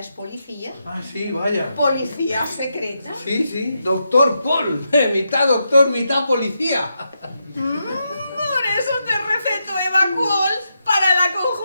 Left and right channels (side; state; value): both; inverted; correlation -0.84